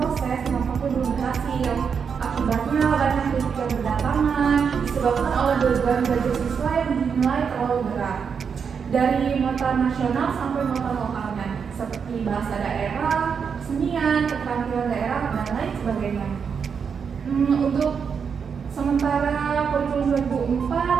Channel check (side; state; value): left; quieter; 6.4 dB